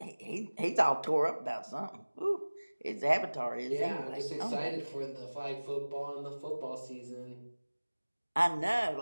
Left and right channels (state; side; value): inverted; both; correlation -1.00